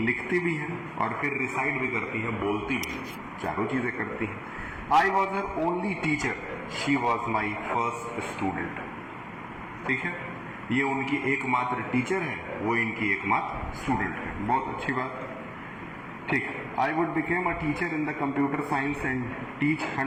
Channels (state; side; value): identical; both; correlation 1.00